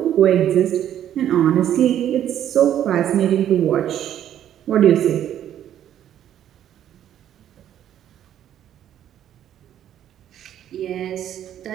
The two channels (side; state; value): left; quieter; 10.8 dB